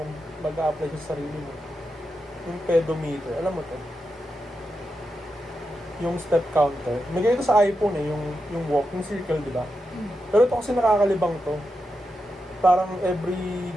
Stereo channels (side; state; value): both; normal; correlation 0.87